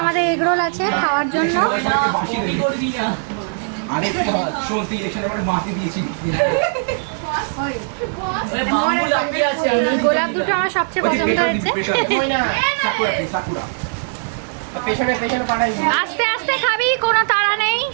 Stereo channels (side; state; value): left; silent; digital silence